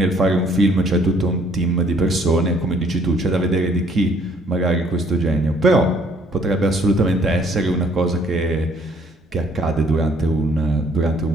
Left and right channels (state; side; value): normal; both; correlation 0.62